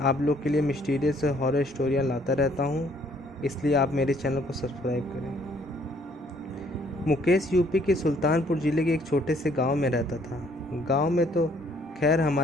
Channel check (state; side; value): normal; both; correlation 0.63